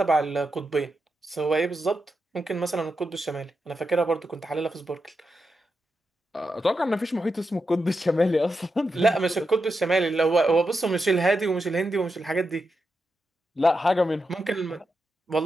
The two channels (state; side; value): normal; both; correlation 0.86